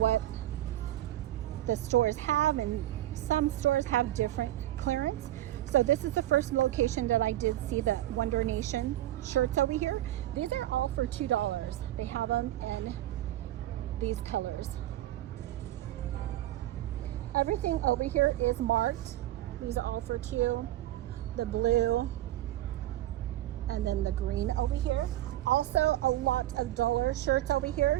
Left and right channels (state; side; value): quieter; left; 14.2 dB